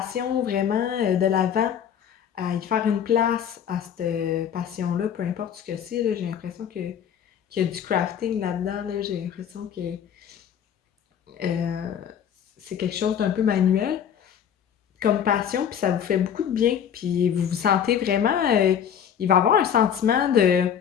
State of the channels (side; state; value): right; quieter; 8.6 dB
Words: vraiment de l'avant, à y faire une place à cette passion-là, peu importe ce que c'est. Là, j'ai l'impression qu'il y a du crafting là-dedans. Là, j'ai l'impression que euh, c'est quelque chose d'un peu manuel comme passion, puis ça vous fait beaucoup de bien, puis vous vous sentez vraiment, il va y avoir un sentiment